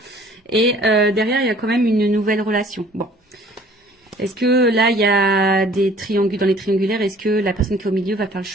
Et derrière, il y a quand même une nouvelle relation. Bon. Est-ce que là, il y a des triangulaires, dans les triangulaires, est-ce que la personne qui est au milieu va faire le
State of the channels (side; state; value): both; normal; correlation 0.53